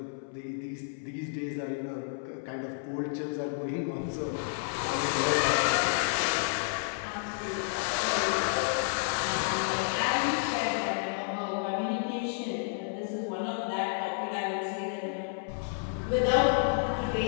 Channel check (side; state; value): right; silent; 56 dB below the other